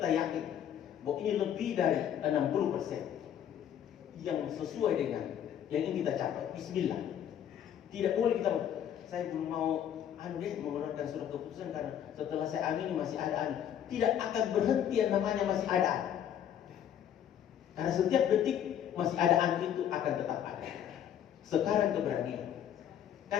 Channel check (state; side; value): quieter; right; 9.8 dB